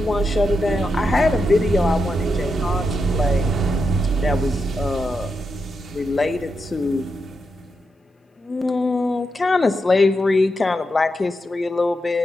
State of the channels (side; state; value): both; normal; correlation 0.85